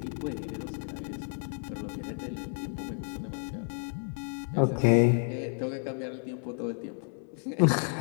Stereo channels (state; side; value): silent; right; 55 dB below the other